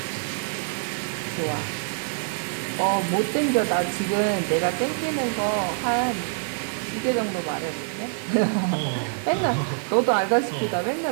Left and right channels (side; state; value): left; silent; digital silence